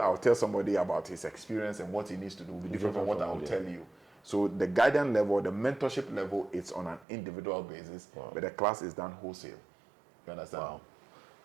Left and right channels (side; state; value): left; drops out; at 7.1 s